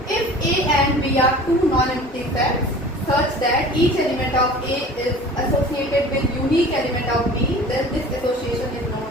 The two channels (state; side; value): normal; both; correlation 0.42